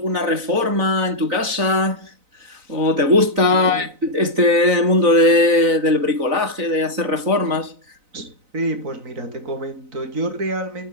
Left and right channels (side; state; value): left; late; 3.9 ms